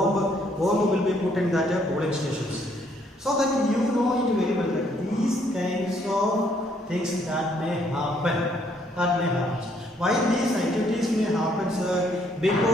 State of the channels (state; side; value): normal; both; correlation 0.68